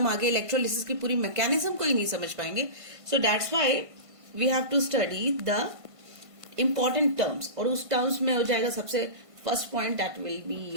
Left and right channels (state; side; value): late; left; 1.5 ms